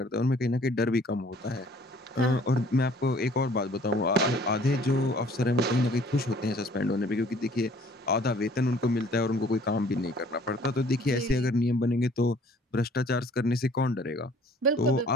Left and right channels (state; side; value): normal; both; correlation 0.55